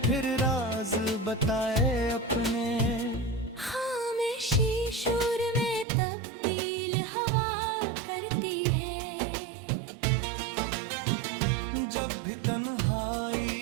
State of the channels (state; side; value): drops out; left; at 5.9 s